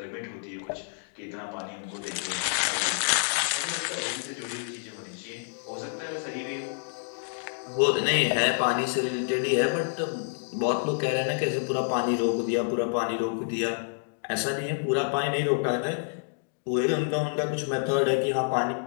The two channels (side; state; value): right; silent; digital silence